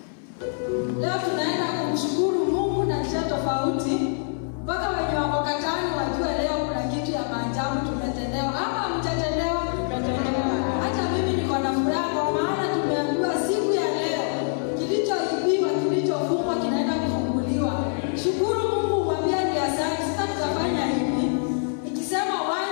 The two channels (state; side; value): silent; right; 59 dB below the other